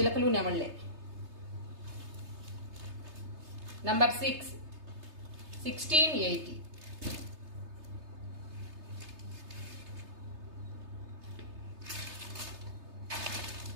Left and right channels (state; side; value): late; left; 3.3 ms